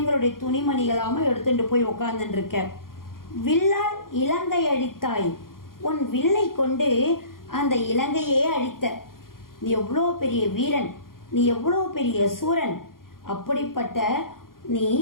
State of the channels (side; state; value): right; late; 0.91 ms